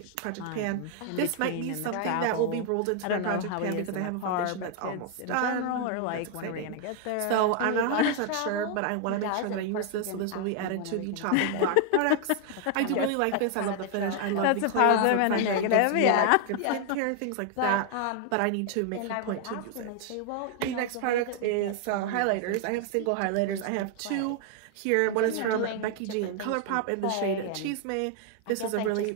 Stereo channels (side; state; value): both; different; correlation 0.00